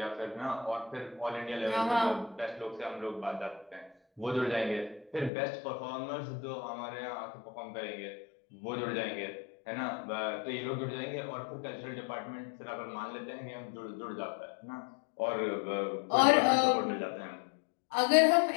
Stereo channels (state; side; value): drops out; right; at 5.3 s